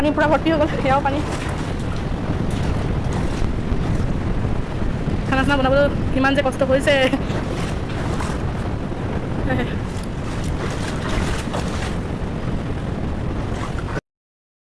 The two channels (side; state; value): both; identical; correlation 1.00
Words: পূৰা ভৰ্তি হৈ গ'ল সেয়াও পানী খানা চানা বনাবলৈ কিমান যে কষ্ট কৰিছে